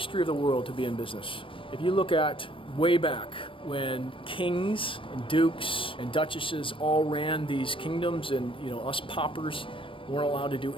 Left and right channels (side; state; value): right; late; 0.25 ms